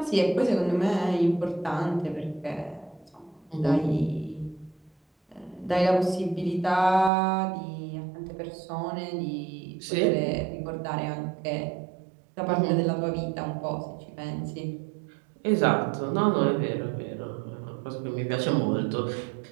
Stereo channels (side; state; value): left; drops out; at 7.1 s